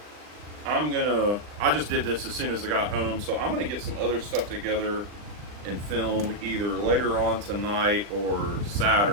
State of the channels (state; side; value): late; left; 39 ms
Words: I just did this as soon as I got home, so I'm gonna get some other stuff together and film either later on tonight or